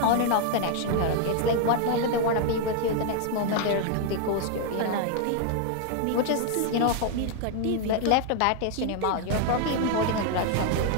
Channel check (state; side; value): different; both; correlation 0.00